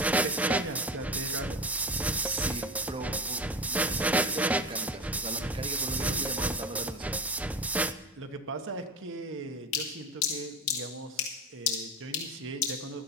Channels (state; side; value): normal; both; correlation 0.27